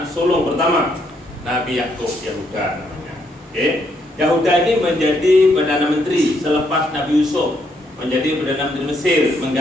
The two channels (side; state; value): both; normal; correlation 0.74